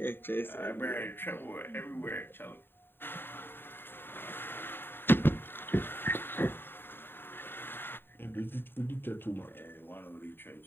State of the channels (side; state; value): right; late; 0.10 ms